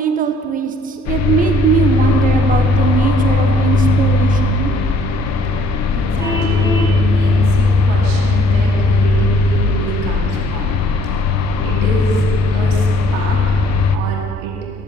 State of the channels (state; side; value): normal; both; correlation 0.61